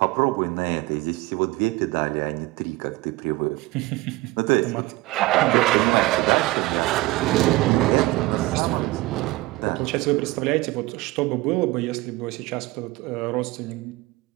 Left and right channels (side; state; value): left; quieter; 19.9 dB